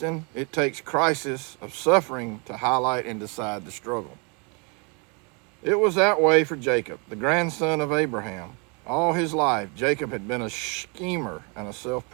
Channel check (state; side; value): quieter; left; 33.5 dB